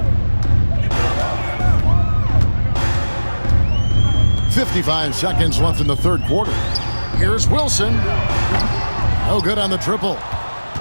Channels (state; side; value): inverted; both; correlation -1.00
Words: 55 seconds left in the third quarter. Here's Wilson. No good on the triple.